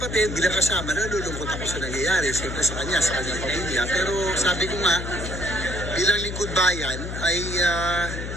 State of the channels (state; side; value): noise; left; hum, 6 dB below the sound